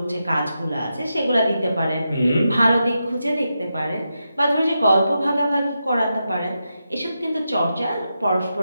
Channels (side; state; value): both; inverted; correlation -0.87